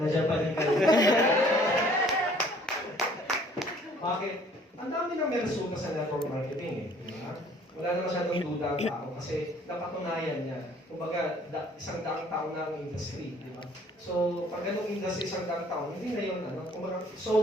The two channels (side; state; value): both; normal; correlation 0.58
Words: pa rin kayo. Bakit? Ang dami na may resulta sa network marketing eh. Diba? Wala na masyadong duda ang tao kasi napatunayan niya. Kumbaga, isang daang taon na ang industry. Diba? So, pag ganong industry isang daang taon, hindi na yun, kumbaga,